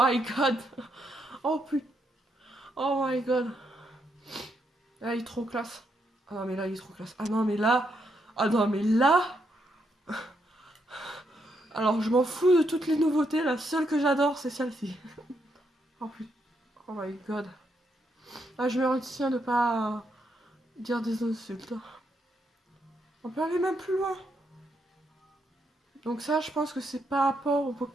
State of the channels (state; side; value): normal; both; correlation 0.78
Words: god. Oh putain. Oh my god. Là, il est trop classe. Ah non, mais là, il est trop classe. Ah non, mais là. Ah non, mais là. Alors, je m'en fous de toutes les nouveautés. La seule que j'adore, c'est celle-ci. Oh putain. Oh my god. Ah, je me retiens de pas dire des insultes. On peut aller même plus loin. Donc ça, je pense que c'est par rapport aux